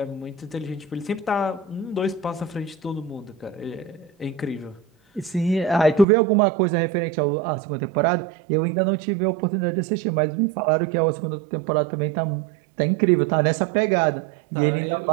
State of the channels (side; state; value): left; drops out; at 6.1 s